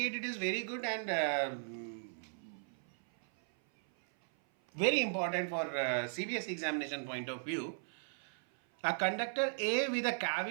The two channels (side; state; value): left; silent; 53 dB below the other